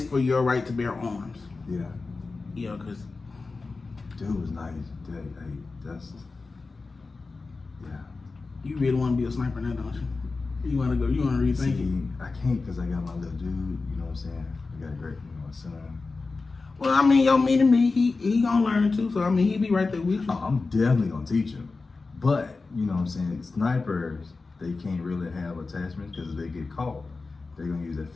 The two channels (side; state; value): right; quieter; 3.9 dB